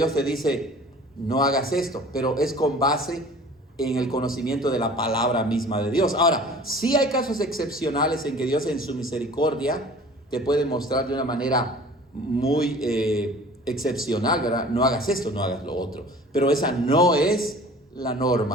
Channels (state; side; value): normal; both; correlation 0.45